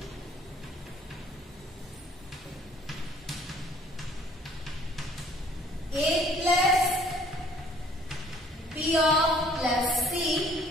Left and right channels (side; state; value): both; normal; correlation 0.57